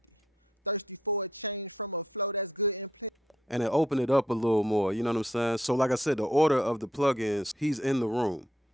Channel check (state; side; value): normal; both; correlation 0.73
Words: And it opened it up a little more, you know what I'm saying? So like I said, the order of the plugins, he's in the room,